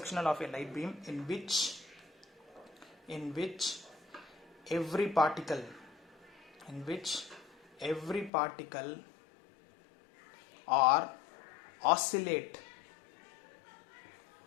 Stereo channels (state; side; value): drops out; right; at 8.3 s